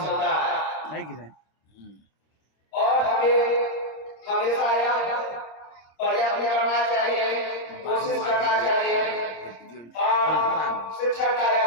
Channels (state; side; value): late; right; 26 ms